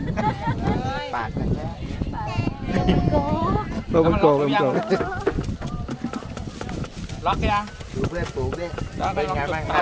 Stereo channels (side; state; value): both; identical; correlation 1.00